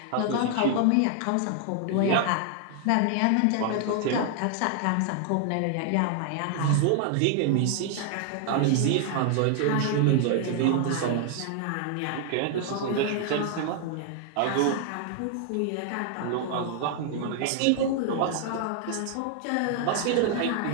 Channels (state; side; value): different; both; correlation 0.00